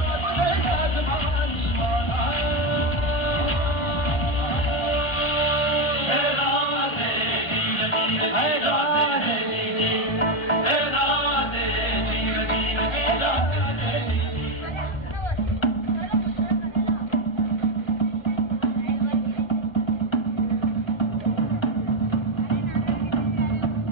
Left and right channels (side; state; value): right; late; 1.5 ms